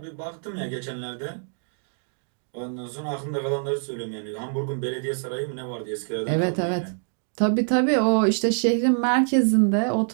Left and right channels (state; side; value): silent; left; digital silence